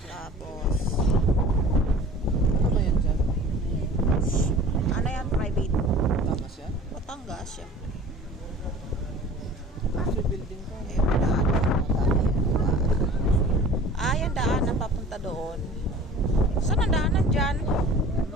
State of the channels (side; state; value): both; normal; correlation 0.43